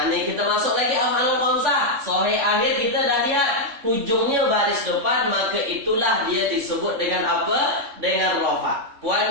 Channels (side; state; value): left; late; 3.5 ms